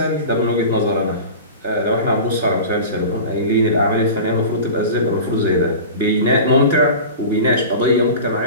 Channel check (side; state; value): both; inverted; correlation -0.34